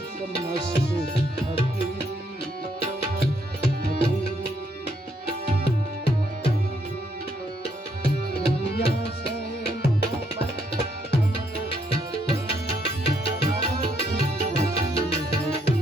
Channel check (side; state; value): both; normal; correlation 0.73